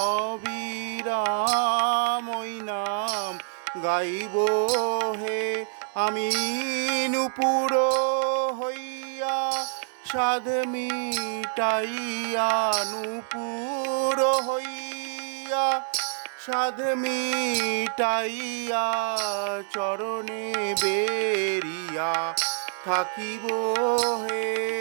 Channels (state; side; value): silent; left; digital silence